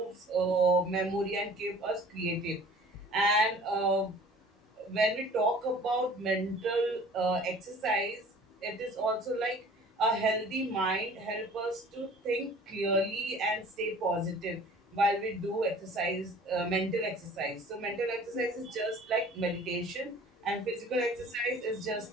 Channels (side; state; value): both; normal; correlation 0.48